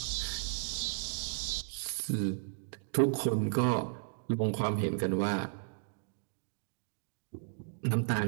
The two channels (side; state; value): left; silent; digital silence